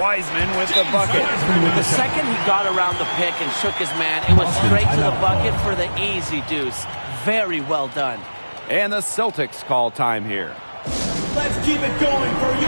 with the bucket. The second he got around the pick and shook his man, it was straight to the bucket for the easy deuce. Very well done. And the Celtics call time here. Let's keep it going for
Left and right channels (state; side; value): inverted; both; correlation -1.00